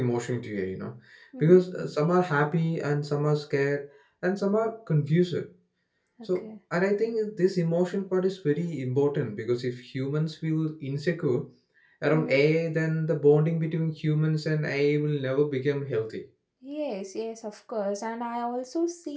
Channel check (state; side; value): identical; both; correlation 1.00